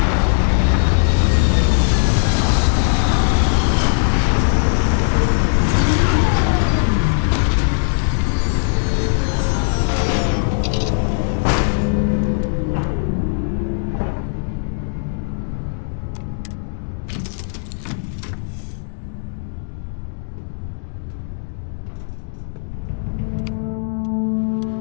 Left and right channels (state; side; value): silent; right; digital silence